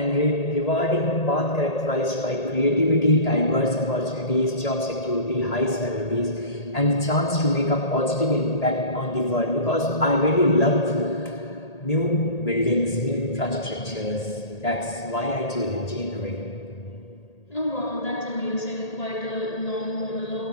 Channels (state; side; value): late; right; 1.8 ms